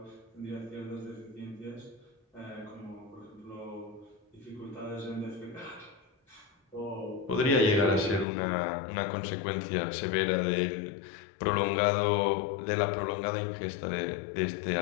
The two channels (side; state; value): right; drops out; at 8.2 s